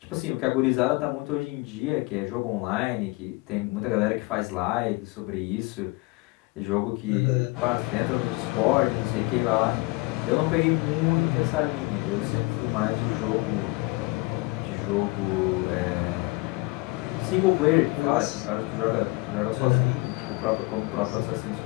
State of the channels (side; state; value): right; quieter; 24.7 dB